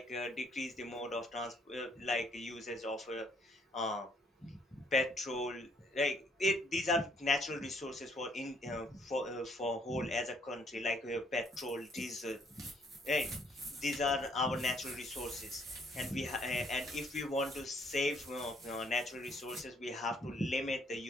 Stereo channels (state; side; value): normal; both; correlation 0.66